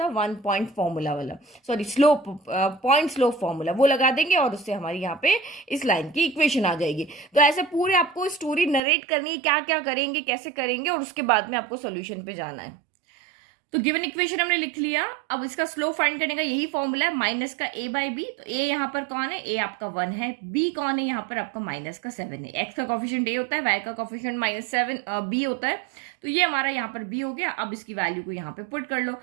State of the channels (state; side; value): drops out; left; at 8.8 s